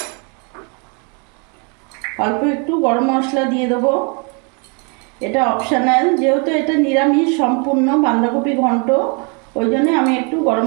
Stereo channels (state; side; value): quieter; left; 35.1 dB